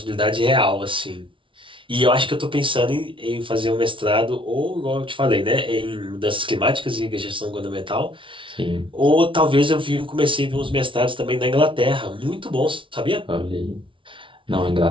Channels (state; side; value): late; left; 0.25 ms